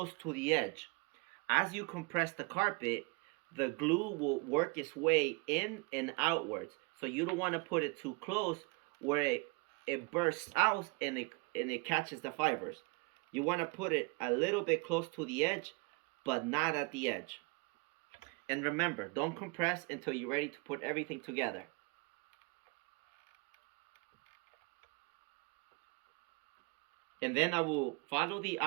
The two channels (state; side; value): quieter; left; 29.9 dB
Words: to the edge. As you compress the carpet, the glue will work its way in and outwards. So you don't want to put it too close where it bursts out and it catches the fibers. You want to put it a little bit close to the edge, but not at the edge. And remember, don't compress until you're ready to put everything together. And then I will follow the